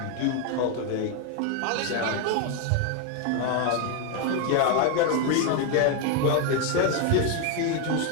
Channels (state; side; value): different; both; correlation 0.01